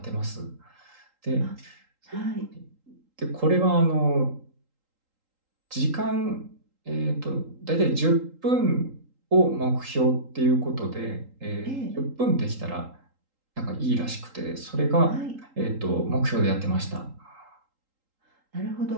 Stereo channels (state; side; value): late; left; 3.8 ms